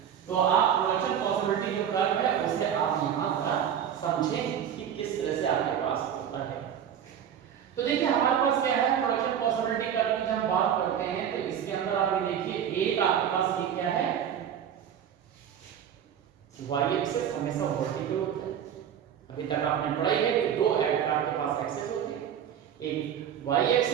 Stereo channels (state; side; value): quieter; left; 9.1 dB